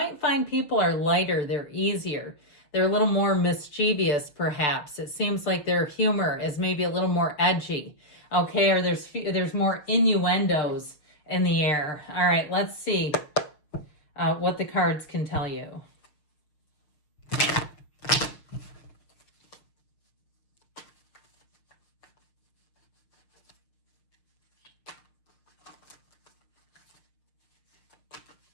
find people are lighter, they're easier. They're a little more mischievous, perhaps. It seems like their humor is maybe a little more edgy, okay? Or there's more innuendos in the air. All right, let's see what the cards can tell you.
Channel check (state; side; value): late; right; 6.8 ms